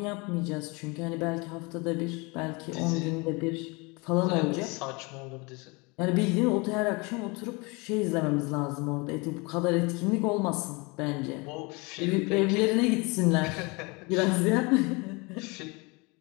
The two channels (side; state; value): right; quieter; 27.7 dB